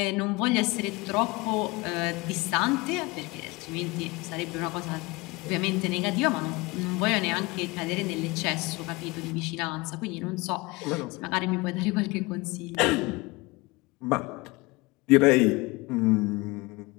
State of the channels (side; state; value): right; quieter; 23.9 dB